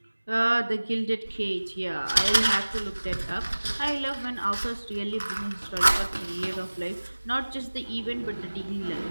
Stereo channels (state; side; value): inverted; both; correlation -1.00